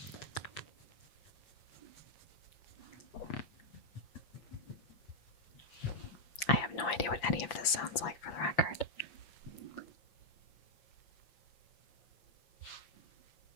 I have no idea what any of this sounds like for the record.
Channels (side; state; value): right; late; 8.4 ms